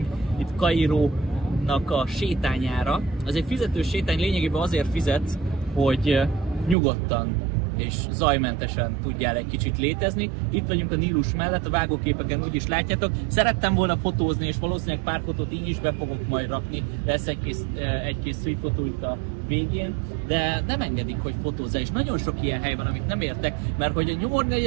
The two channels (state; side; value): drops out; left; at 6.8 s